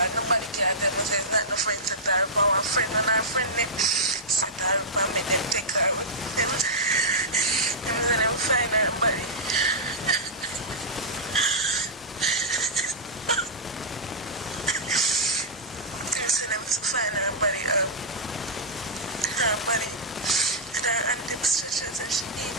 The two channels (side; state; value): both; normal; correlation -0.10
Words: nobody can tell me, it's not no friend set her up, one friend and our friend them set her up and make them take her with them. Them say them find her body. Them say them find her body, and her and them stretchers and she